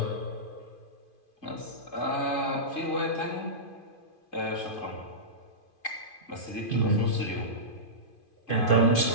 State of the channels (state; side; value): late; right; 2.5 ms